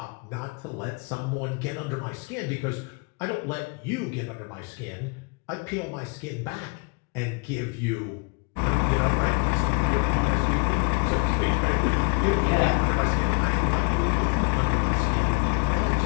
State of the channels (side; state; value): right; quieter; 32.0 dB